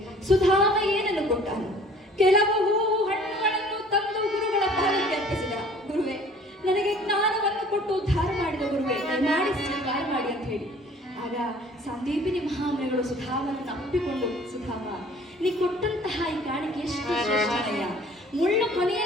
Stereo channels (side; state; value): both; normal; correlation 0.52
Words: ಸುಧಾಮ ಏನನ್ನು ಕೊಟ್ಟಾನು? ಕೆಲವು ಹಣ್ಣುಗಳನ್ನು ತಂದು ಗುರುಗಳ ಪಾದಕ್ಕೆ ಅರ್ಪಿಸಿದ. ಗುರುವೇ, ನನಗೆ ಜ್ಞಾನವನ್ನು ಕೊಟ್ಟು ಉದ್ಧಾರ ಮಾಡಿದ ಗುರುವೇ, ಮಾಡಿ ಸ್ವೀಕಾರ ಮಾಡಿ ಅಂತ ಹೇಳಿ. ಆಗ ಸಂದೀಪಿನಿ ಮಹಾಮುನಿಗಳು ಸುಧಾಮನನ್ನು ಅಪ್ಪಿಕೊಂಡು, ಸುಧಾಮ, ನೀ ಕೊಟ್ಟಂತಹ ಈ ಕಾಣಿಕೆ ಎಷ್ಟು ಶ್ರೇಷ್ಠನಯ್ಯ. ಮುಳ್ಳು